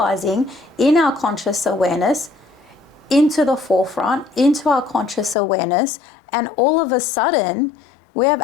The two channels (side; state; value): right; drops out; at 5.4 s